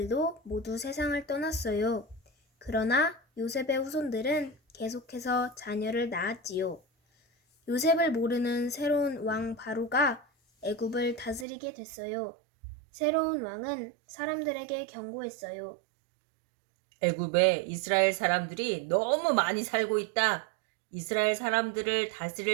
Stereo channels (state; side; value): drops out; left; at 11.5 s